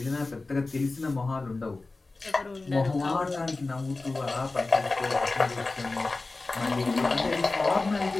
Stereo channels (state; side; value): quieter; right; 3.4 dB